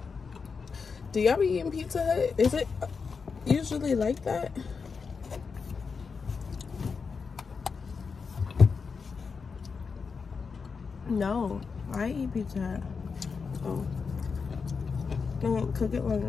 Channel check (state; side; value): quieter; right; 5.3 dB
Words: Do y'all be eating Pizza Hut? Is it usually like that? No, I eat Pizza Hut. Oh. I won't cook it long